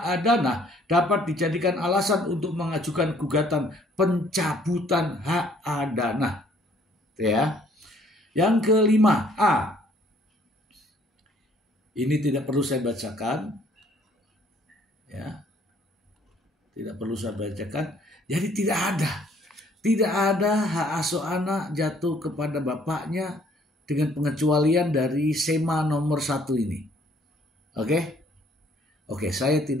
adana dapat dijadikan alasan untuk mengajukan gugatan pencabutan hak adana. Ya. Yang kelima, A. Ini tidak perlu saya bacakan. Ya. Tidak perlu saya bacakan. Jadi tidak ada hak asuh anak jatuh kepada bapaknya dengan pengecualian dari SEMA nomor 1 ini. Oke, saya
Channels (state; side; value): normal; both; correlation 0.61